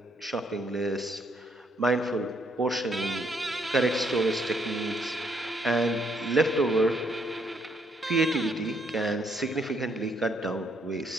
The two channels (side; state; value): both; normal; correlation 0.71